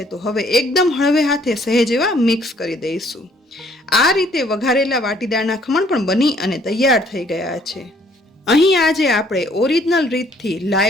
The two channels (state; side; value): normal; both; correlation 0.63